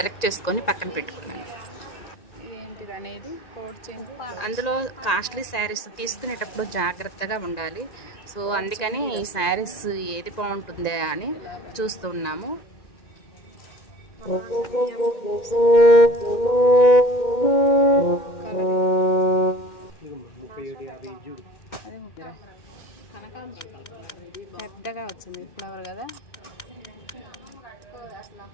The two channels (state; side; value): late; right; 1.9 ms